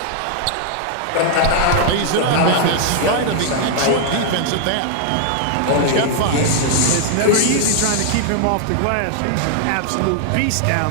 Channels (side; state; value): both; different; correlation 0.00